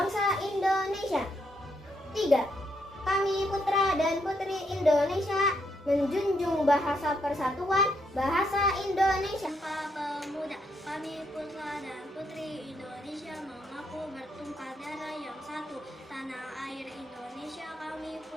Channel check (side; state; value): both; normal; correlation 0.77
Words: Indonesia. 3. Kami putra dan putri Indonesia menjunjung bahasa persatuan, bahasa Indonesia. Sumpah Pemuda. Kami putra dan putri Indonesia mengaku bertumpah darah yang satu, tanah air Indonesia. Kami